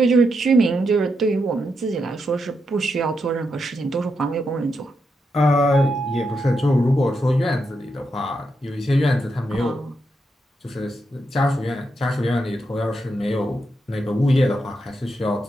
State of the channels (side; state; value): both; normal; correlation 0.83